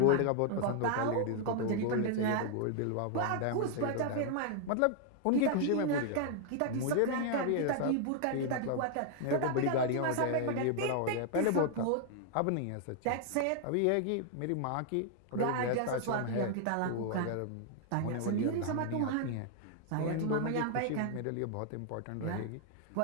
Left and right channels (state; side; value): different; both; correlation 0.00